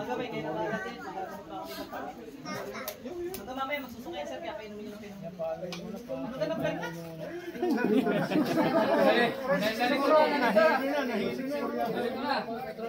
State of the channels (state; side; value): identical; both; correlation 1.00